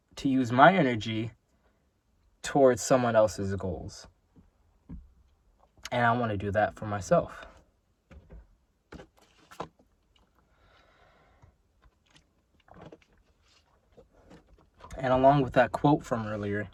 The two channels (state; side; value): identical; both; correlation 1.00